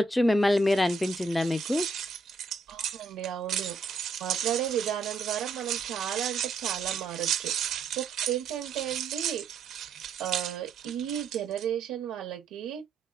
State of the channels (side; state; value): left; quieter; 3.3 dB